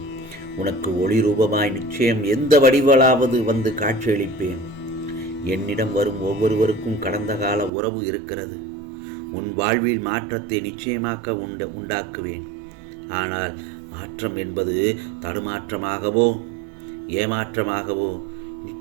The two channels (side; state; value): left; drops out; at 7.7 s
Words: உனக்கு ஒளி ரூபமாய் நிச்சயம் எந்த வடிவலாவது வந்து காட்சியளிப்பேன். என்னிடம் வரும் ஒவ்வொருவருக்கும் கடந்த கால உறவு இருக்கிறது. உன் வாழ்வில் மாற்றத்தை நிச்சயமாக உண்டாக்குவேன். ஆனால் மாற்றம் என்பது தடுமாற்றமாகவோ ஏமாற்றமாகவோ